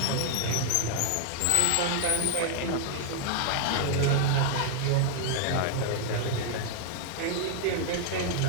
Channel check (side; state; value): both; different; correlation 0.00